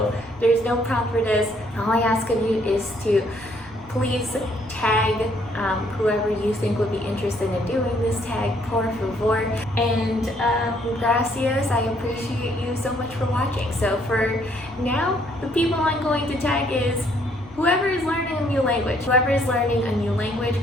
there's no prompt for this. All I ask of you is to please tag whoever you think would be interested in doing this tag, por favor. And gracias, I appreciate you so much for watching. So for now, the people I'm going to tag is whoever is learning a new language. Whoever is learning a new language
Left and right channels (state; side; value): noise; left; rumble, 23 dB below the sound